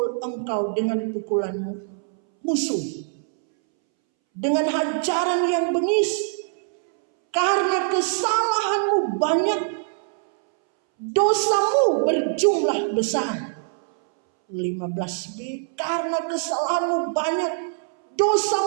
engkau dengan pukulanmu musuh, dengan hajaran yang bengis, karena kesalahanmu banyak, dosamu berjumlah besar. 15b, karena kesalahanmu banyak,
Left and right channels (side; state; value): left; silent; 63 dB below the other